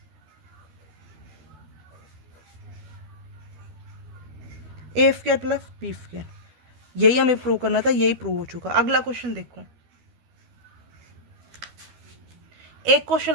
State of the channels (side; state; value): left; late; 13 ms